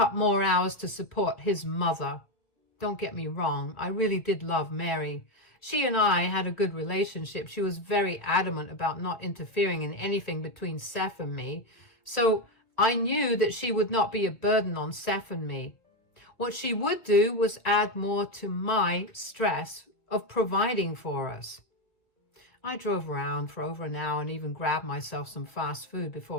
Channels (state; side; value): late; right; 1.6 ms